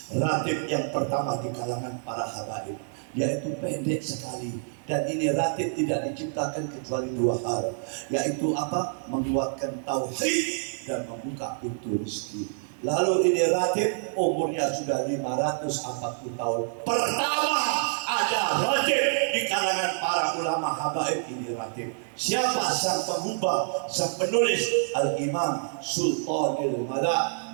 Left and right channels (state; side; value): silent; left; digital silence